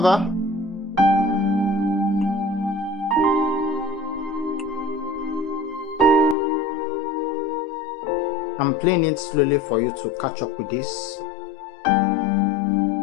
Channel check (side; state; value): right; drops out; at 6.4 s